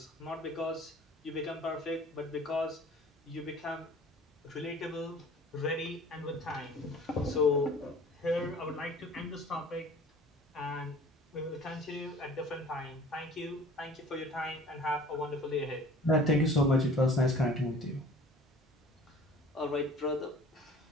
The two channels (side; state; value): both; normal; correlation 0.48